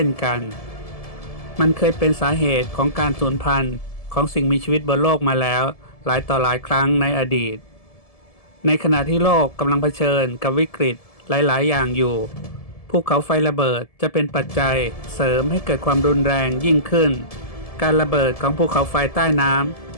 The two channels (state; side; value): late; right; 1.7 ms